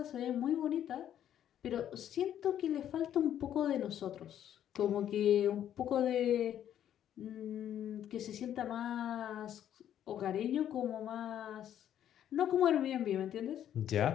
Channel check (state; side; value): quieter; right; 10.5 dB